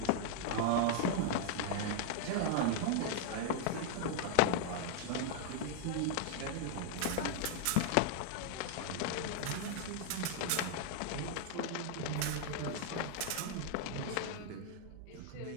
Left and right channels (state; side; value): different; both; correlation 0.00